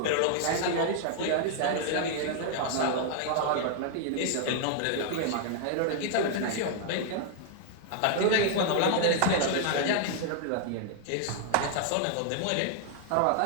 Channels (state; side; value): different; both; correlation 0.00